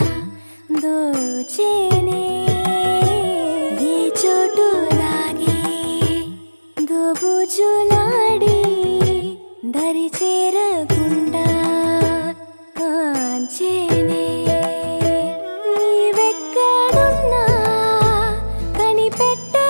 దోచేనే ఏ చోటు లాగే దోబుజులాడి దరి చేరకుండా కాంచేనే నీవెక్కడున్నా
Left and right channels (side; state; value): both; inverted; correlation -1.00